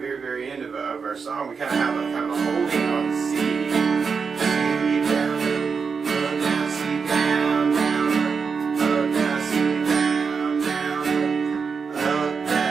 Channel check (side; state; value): left; quieter; 5.5 dB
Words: very end of our song, we kind of have a kind of a holding on the C.